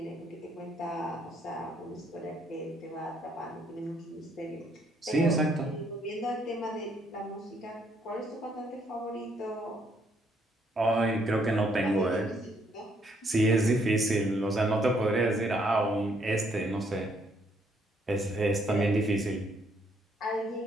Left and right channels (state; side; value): normal; both; correlation 0.69